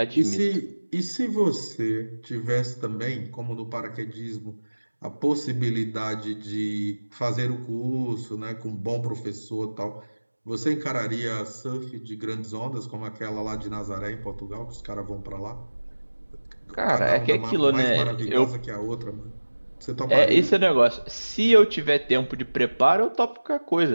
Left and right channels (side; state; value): both; inverted; correlation -1.00